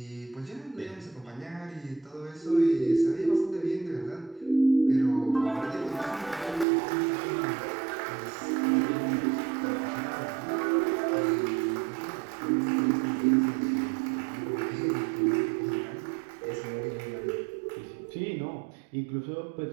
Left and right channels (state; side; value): drops out; left; at 6.7 s